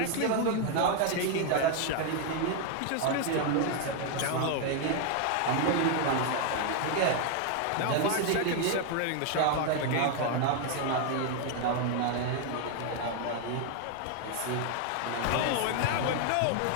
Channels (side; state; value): both; different; correlation 0.01